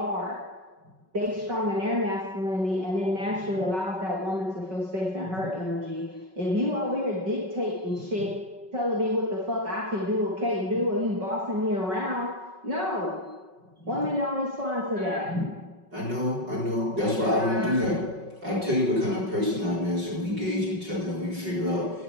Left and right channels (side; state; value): left; late; 5.3 ms